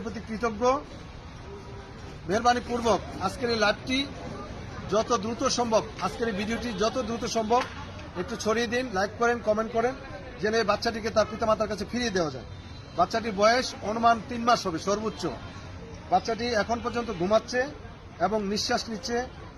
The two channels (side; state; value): both; identical; correlation 1.00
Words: প্রতি কৃতজ্ঞ। মেহরবানি পূর্বক আজকের এই লাইভটি যত দ্রুত সম্ভব, আজকের এই ভিডিওটি যত দ্রুত সম্ভব একটু ছড়িয়ে দিন, লাইক করেন, কমেন্ট করেন, যেন এই বাচ্চাটিকে তার পিতামাতার কাছে ফিরিয়ে দেওয়া যায়। বাচ্চাটির বয়স অনুমান 3 মাস হবে সর্বোচ্চ। বাচ্চাটি এখন পর্যন্ত ঘুমাচ্ছে এবং নিঃশ্বাস নিচ্ছে।